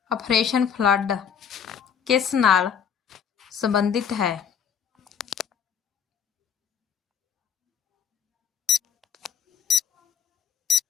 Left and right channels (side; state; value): right; quieter; 7.4 dB